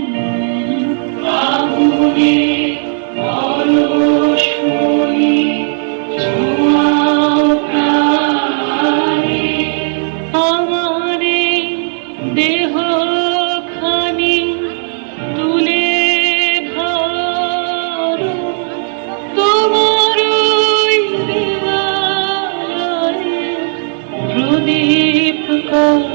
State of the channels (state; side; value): silent; left; digital silence